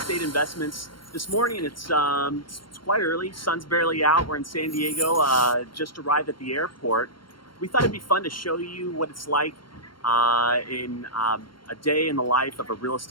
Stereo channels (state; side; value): late; right; 0.72 ms